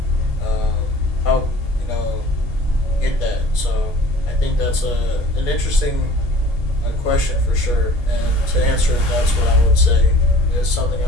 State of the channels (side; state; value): both; normal; correlation 0.48